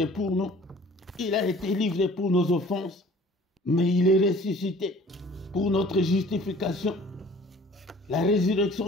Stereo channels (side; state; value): both; normal; correlation 0.51